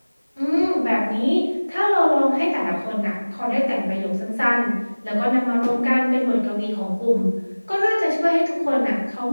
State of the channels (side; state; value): both; inverted; correlation -1.00